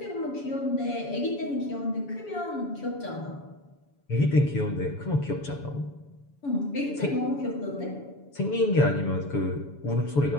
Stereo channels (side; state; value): right; late; 7.0 ms